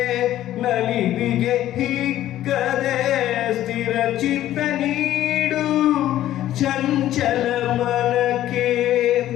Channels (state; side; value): quieter; right; 13.1 dB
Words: ನಲಿವಿಗೆ ಹಿಕ್ಕದೆ ಸ್ಥಿರ ಚಿತ್ತ ನೀಡು ಚಂಚಲ ಮಲಕ್ಕೆ